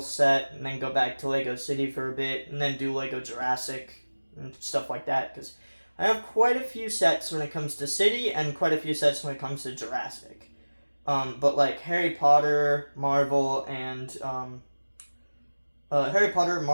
set, and then go back to Lego City for a bit, and then do Lego Jurassic and stuff like that, because I have quite a few sets when it comes to City, and quite a few sets when it comes to Jurassic. But Harry Potter, Marvel, and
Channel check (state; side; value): inverted; both; correlation -1.00